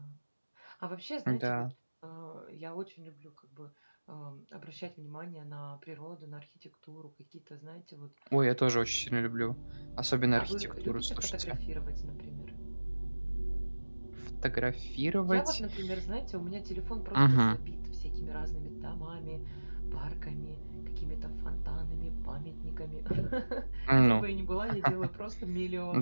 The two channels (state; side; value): inverted; both; correlation -1.00